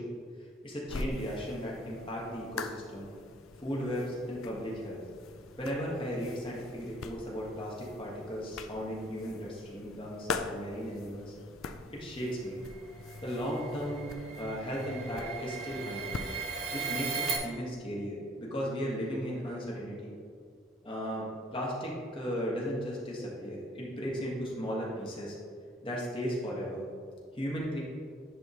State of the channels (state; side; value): normal; both; correlation 0.57